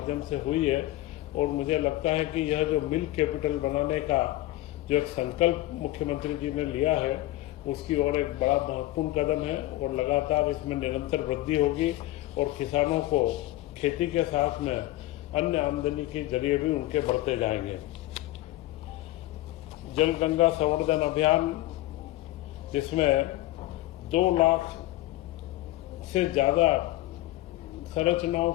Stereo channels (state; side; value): quieter; right; 16.8 dB